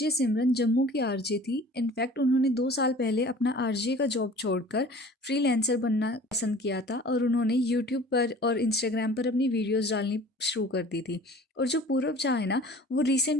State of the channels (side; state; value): both; normal; correlation 0.46